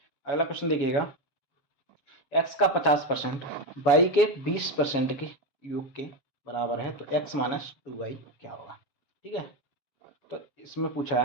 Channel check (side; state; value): right; late; 7.1 ms